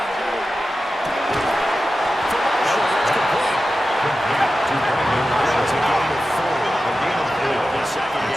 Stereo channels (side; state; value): both; normal; correlation 0.93